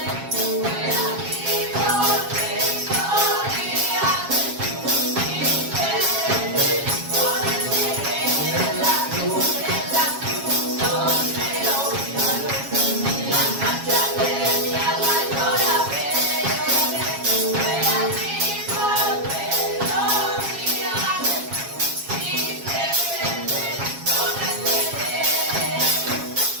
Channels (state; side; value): late; left; 7.3 ms